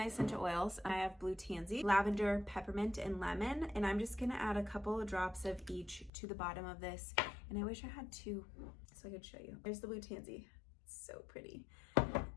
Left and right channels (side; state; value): right; drops out; at 6.1 s